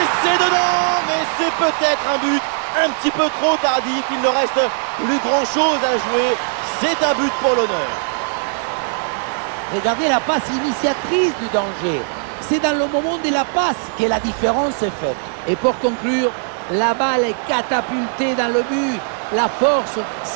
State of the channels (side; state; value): left; silent; 67 dB below the other